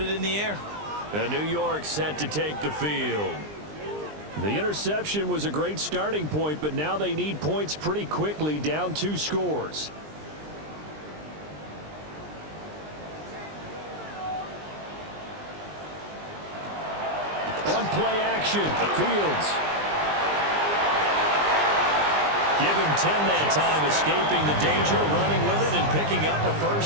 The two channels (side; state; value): left; late; 20 ms